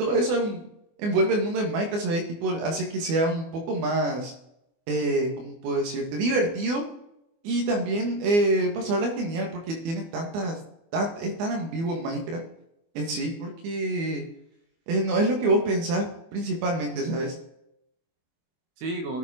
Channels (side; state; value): left; late; 24 ms